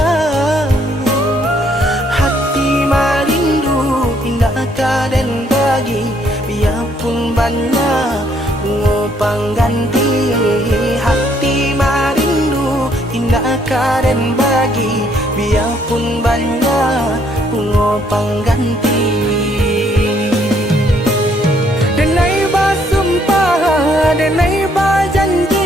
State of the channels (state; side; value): normal; both; correlation 0.68